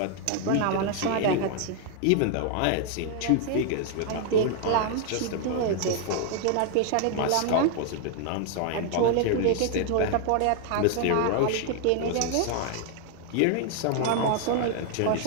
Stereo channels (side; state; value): both; different; correlation 0.00